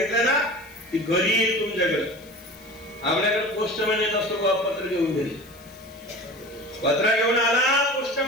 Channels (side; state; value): left; noise; hiss, 25 dB below the sound